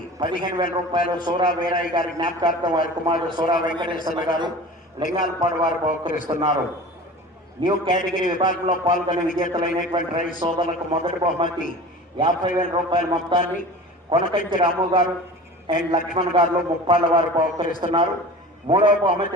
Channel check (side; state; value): both; normal; correlation 0.37